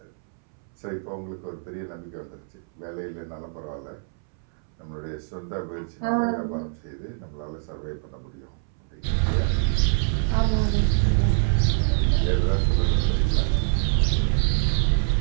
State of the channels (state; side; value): silent; left; 62 dB below the other